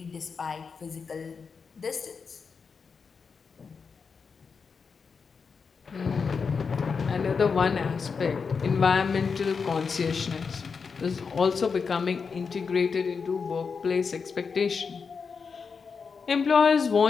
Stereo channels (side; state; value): right; quieter; 5.4 dB